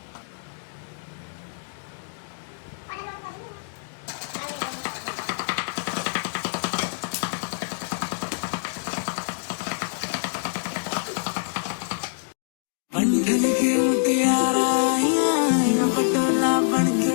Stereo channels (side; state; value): right; silent; digital silence